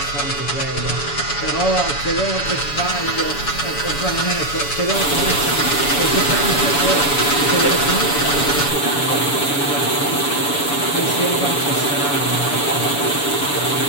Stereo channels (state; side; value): late; right; 7.0 ms